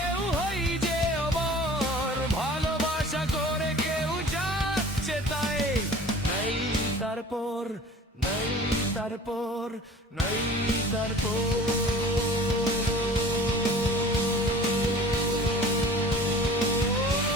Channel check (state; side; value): normal; both; correlation 0.44